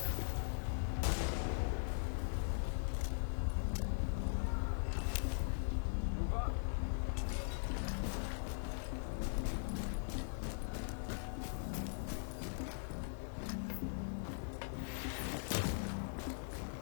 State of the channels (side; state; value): right; silent; digital silence